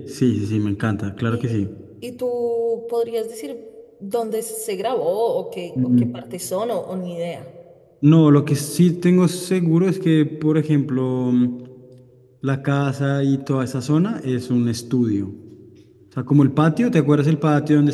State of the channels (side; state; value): both; identical; correlation 1.00